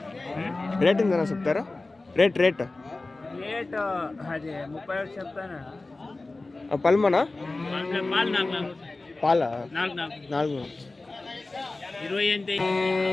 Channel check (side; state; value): right; quieter; 3.2 dB